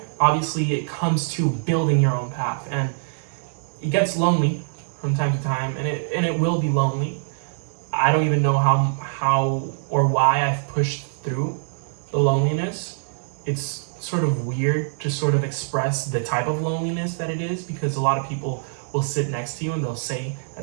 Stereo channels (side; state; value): left; silent; digital silence